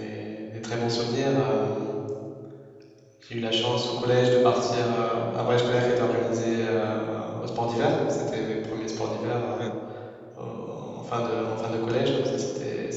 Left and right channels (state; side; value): identical; both; correlation 1.00